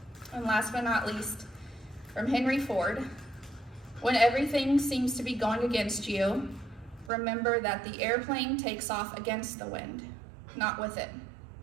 And last but not least, from Henry Ford, when everything seems to be going against you, remember that the airplane takes off against the wind, not with it.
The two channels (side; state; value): left; drops out; at 7.1 s